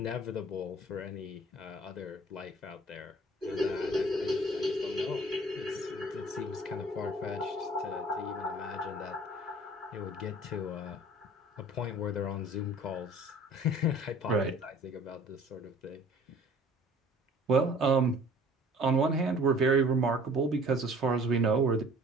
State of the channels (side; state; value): both; normal; correlation 0.50